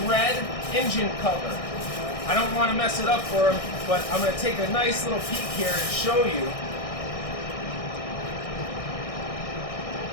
red engine cover. I don't want to mess it up for him, but I'm going to take a nice little peek here and show you.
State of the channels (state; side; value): late; right; 1.6 ms